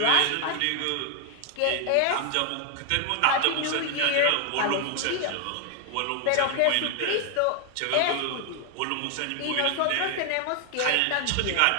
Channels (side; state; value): both; different; correlation 0.00